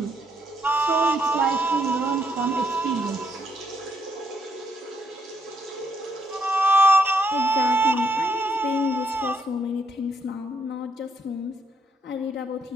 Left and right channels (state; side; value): normal; both; correlation 0.74